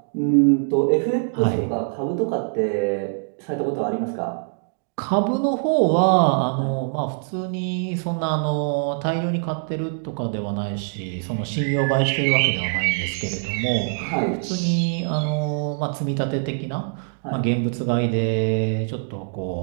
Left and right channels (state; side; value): silent; left; digital silence